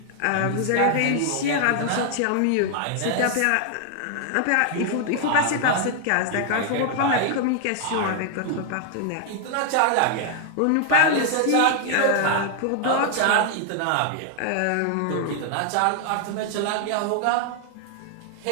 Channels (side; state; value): both; different; correlation 0.00